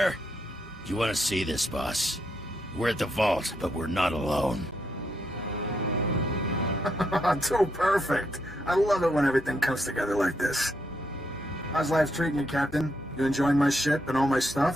You want to see this, boss? We're at the vault, but we're not alone. Too perfect. I love it when everything comes together like this. How's life treating you, Captain? You enjoying my ship and all my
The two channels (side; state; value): both; normal; correlation 0.78